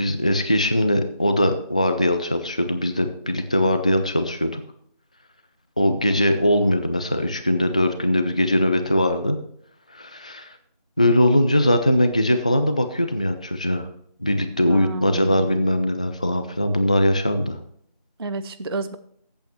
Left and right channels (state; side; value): inverted; both; correlation -0.84